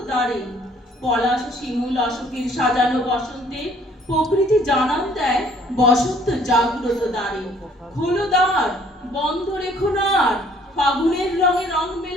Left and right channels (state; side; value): normal; both; correlation 0.59